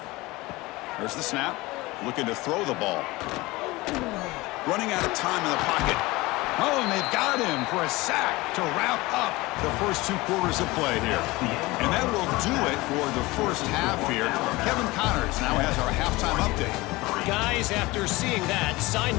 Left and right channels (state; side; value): quieter; right; 21.3 dB